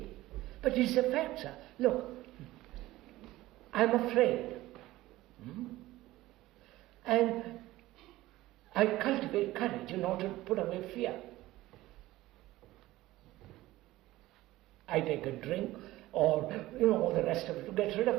But it's a fact, sir. Look, I'm afraid. And I cultivate courage in order to put away fear. I take a drink or, all the rest of it to get rid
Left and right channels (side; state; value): left; quieter; 17.1 dB